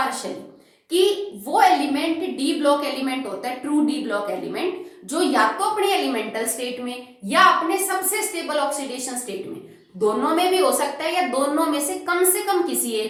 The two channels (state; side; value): identical; both; correlation 1.00